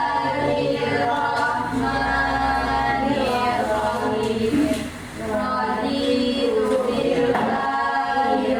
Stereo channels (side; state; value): both; identical; correlation 1.00